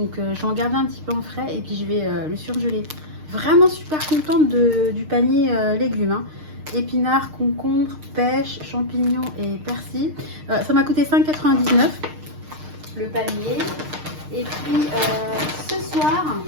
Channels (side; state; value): left; late; 6.5 ms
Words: je vais en garder un petit peu en frais et puis je vais le surgeler. Vraiment super contente du panier légumes. Hein. Épinards, concombres, pêche, champignons et persil. Ça m'a coûté 5,99 € le panier. Et puis, ce soir,